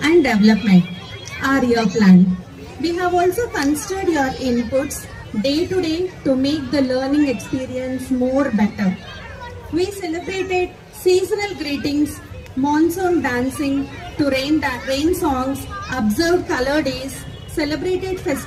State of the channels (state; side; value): identical; both; correlation 1.00